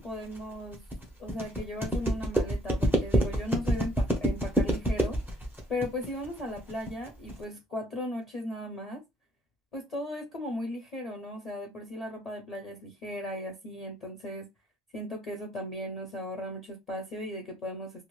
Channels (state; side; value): normal; both; correlation 0.64